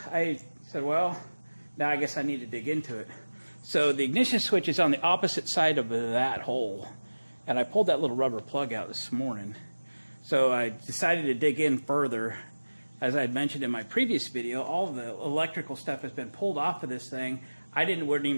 I said, well, now I guess I need to dig into it. So the ignition switch is on the opposite side of that hole, and I pulled that little rubber plug out this morning. So I decided to dig in further. As I had mentioned in my previous video, all of the electrical stuff has been pulled off of this thing. I wasn't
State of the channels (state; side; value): inverted; both; correlation -1.00